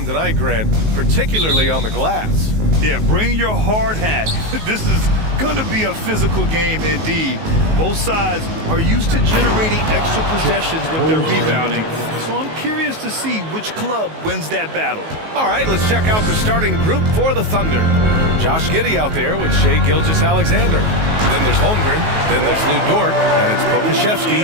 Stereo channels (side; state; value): left; late; 19 ms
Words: tonight, Grant, particularly on the glass. Yeah, bring your hard hat. This is going to be a physical game indeed. Both sides are used to generating extra possessions with their rebounding, so I'm curious to see which club wins that battle. All right, let's check out the starting group for the Thunder. Josh Giddey out there with Shai Gilgeous-Alexander. Then there's Holmgren, then there's Lou Dort, and it's Pokashevsky